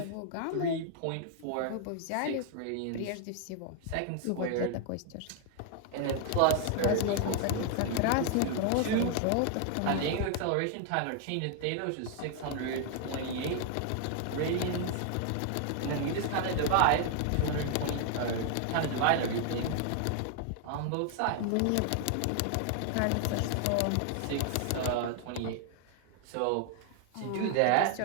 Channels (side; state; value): both; different; correlation 0.00